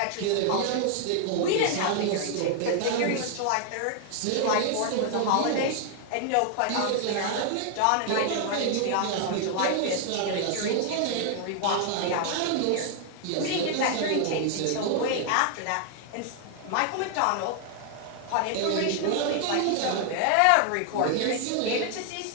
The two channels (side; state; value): both; different; correlation 0.00